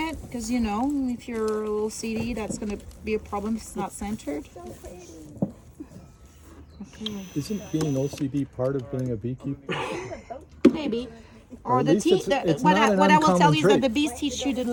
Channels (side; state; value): both; identical; correlation 1.00